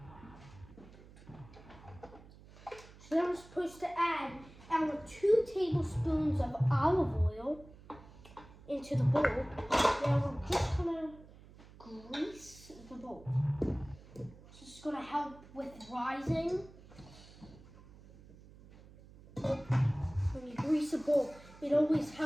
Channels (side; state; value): right; noise; hum, 21 dB below the sound